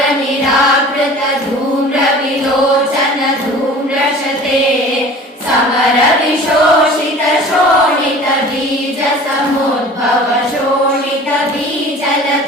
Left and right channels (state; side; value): normal; both; correlation 0.43